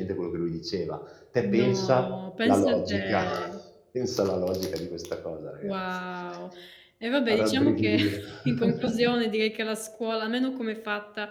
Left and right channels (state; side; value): identical; both; correlation 1.00